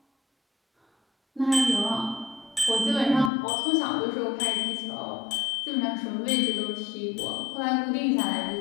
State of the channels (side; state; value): right; drops out; at 3.3 s